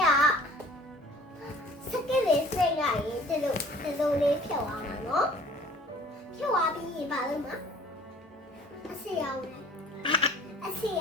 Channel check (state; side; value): normal; both; correlation 0.51